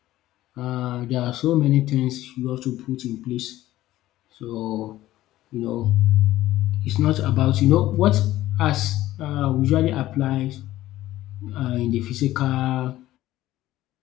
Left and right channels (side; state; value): right; quieter; 15.1 dB